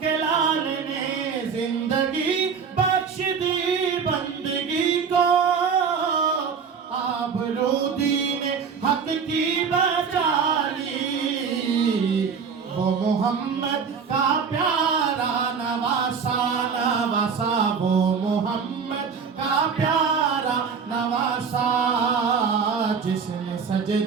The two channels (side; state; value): left; quieter; 6.1 dB